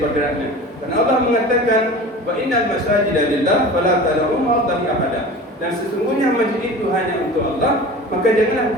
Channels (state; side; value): normal; both; correlation 0.37